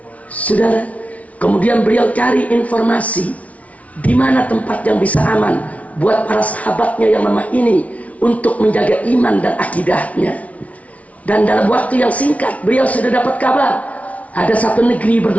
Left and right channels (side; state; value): right; late; 0.067 ms